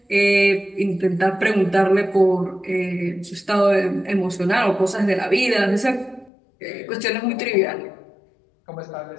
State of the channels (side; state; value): right; drops out; at 6.3 s